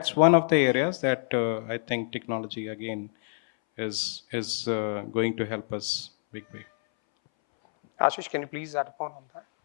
one of the areas that I think technology again is going to help us big way. Ashish, can you please add upon on that?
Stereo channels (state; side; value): silent; right; 60 dB below the other